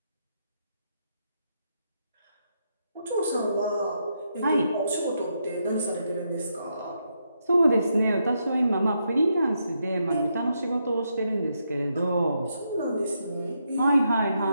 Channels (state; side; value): inverted; both; correlation -0.81